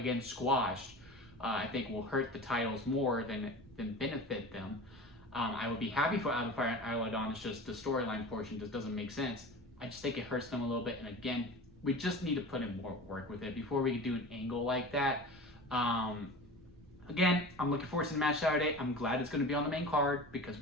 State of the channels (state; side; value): normal; both; correlation 0.35